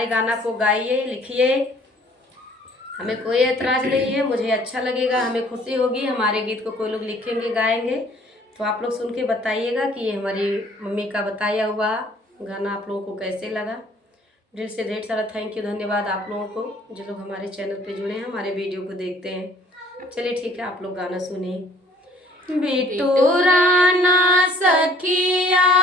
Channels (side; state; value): both; normal; correlation 0.56